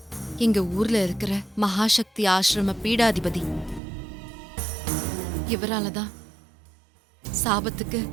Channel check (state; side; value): drops out; left; at 3.8 s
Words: எங்க ஊர்ல இருக்கிற மகாசக்தி ஆசிரம பீடாதிபதி. இவராலதான் சாபத்துக்கு